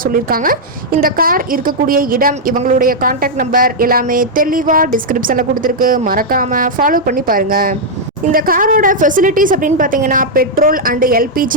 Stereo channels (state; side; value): normal; both; correlation -0.04